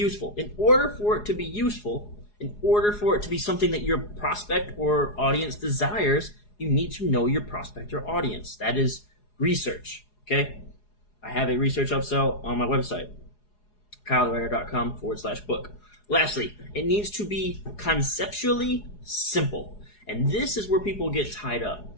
In order for it to be useful, in order for it to be something that your prospect or audience desires, you need to know your prospect or audience. That is research, okay? I have a research upsell on my website, kylewriter.com/book. Lastly, it needs to be conceptually simple. And this is where people get tied up.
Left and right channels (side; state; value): right; late; 4.8 ms